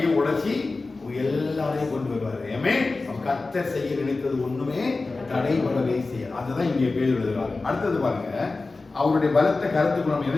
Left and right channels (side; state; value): right; quieter; 3.6 dB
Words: உடைச்சி எல்லாரையும் கொண்டு வருவாரு. கர்த்தர் செய்ய நினைத்தது ஒண்ணுமே தடைபடவே செய்ய. அதுதான் இங்கே பேர் எழுதுறாரு. அடுத்தது பாருங்க, அவருடைய பலத்த கருத்துக்கு நம்ம